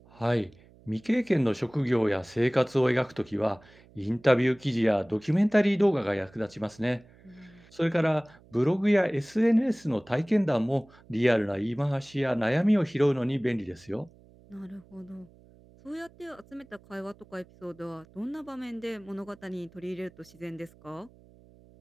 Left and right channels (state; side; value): noise; right; hum, 26 dB below the sound